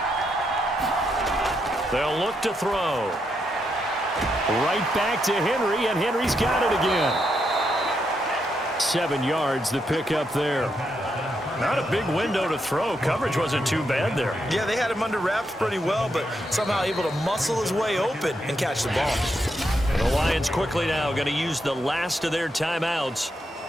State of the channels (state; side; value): normal; both; correlation 0.81